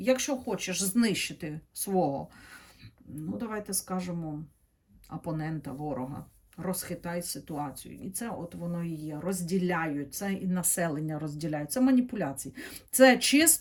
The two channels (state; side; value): identical; both; correlation 1.00